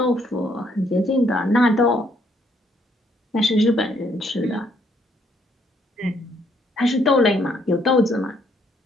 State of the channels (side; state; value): both; normal; correlation 0.69